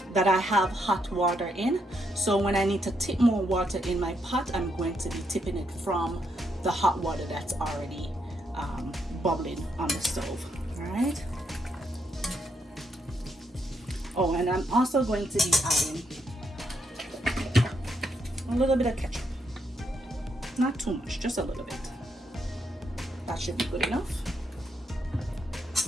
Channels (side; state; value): both; normal; correlation 0.78